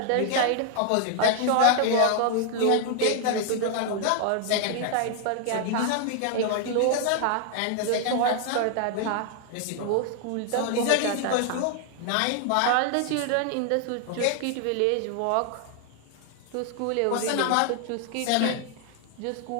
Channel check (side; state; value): both; different; correlation 0.00